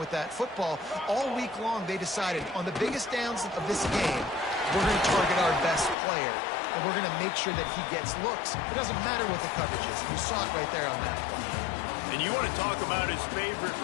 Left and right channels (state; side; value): drops out; right; at 6.0 s